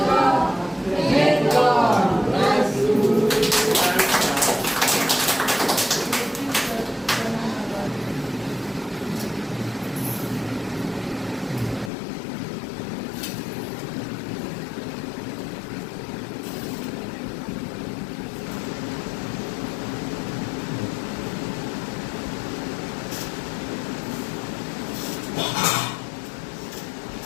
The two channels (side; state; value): right; drops out; at 11.9 s